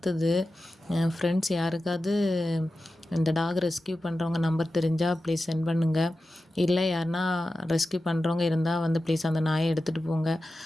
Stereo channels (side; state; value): both; normal; correlation 0.93